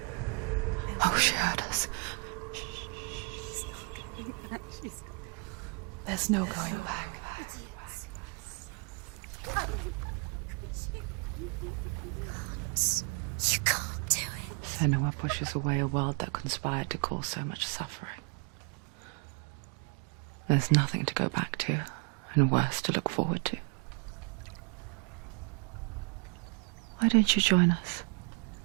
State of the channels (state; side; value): quieter; left; 34.6 dB